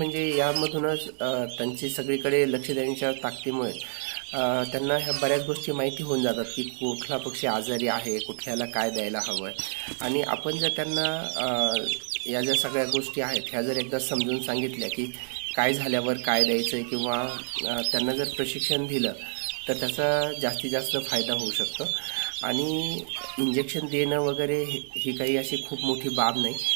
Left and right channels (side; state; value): left; silent; digital silence